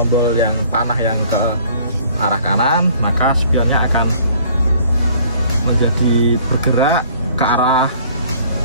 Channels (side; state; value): both; inverted; correlation -0.56